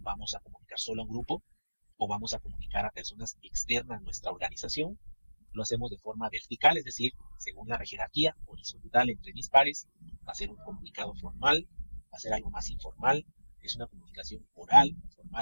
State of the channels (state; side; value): inverted; both; correlation -1.00